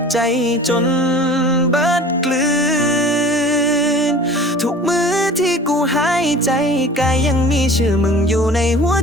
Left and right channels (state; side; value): normal; both; correlation 0.43